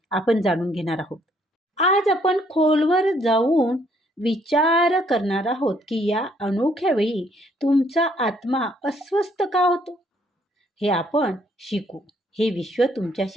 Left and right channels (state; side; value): normal; both; correlation 0.67